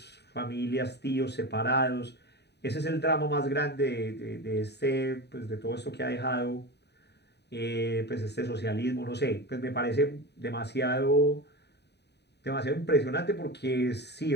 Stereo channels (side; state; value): right; late; 0.49 ms